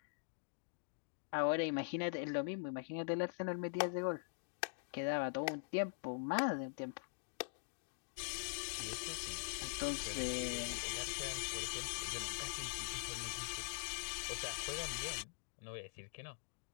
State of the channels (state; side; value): silent; right; digital silence